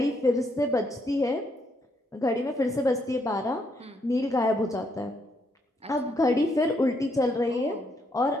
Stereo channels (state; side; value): normal; both; correlation 0.75